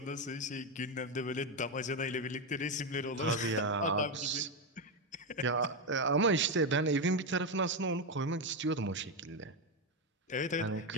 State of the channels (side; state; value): both; normal; correlation 0.09